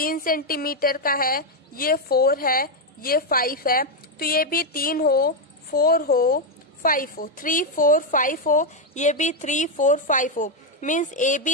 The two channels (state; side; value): normal; both; correlation 0.03